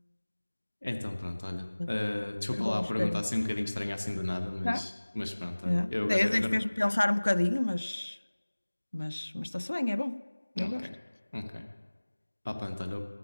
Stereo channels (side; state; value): both; inverted; correlation -1.00